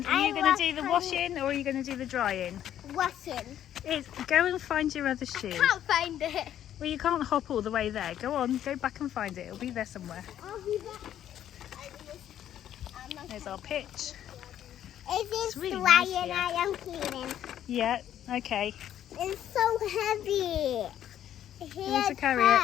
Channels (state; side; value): quieter; right; 10.9 dB